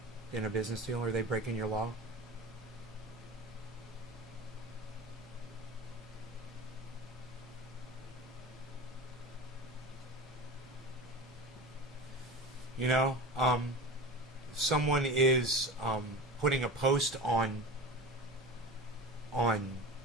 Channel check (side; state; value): both; normal; correlation 0.32